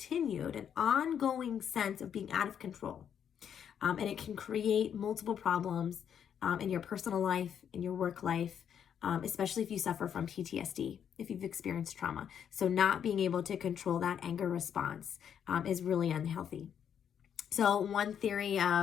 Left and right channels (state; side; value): quieter; right; 8.5 dB